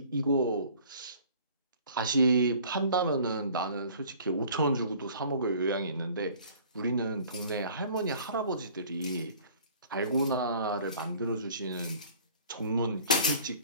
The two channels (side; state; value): both; inverted; correlation -0.50